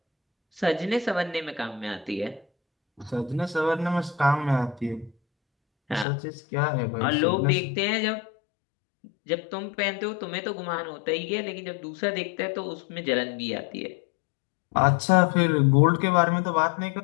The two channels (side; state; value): right; drops out; at 6.1 s